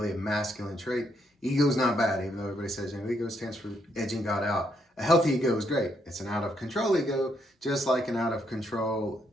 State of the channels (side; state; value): both; normal; correlation 0.75